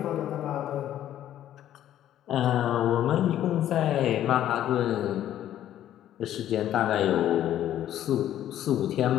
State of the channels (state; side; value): quieter; right; 11.8 dB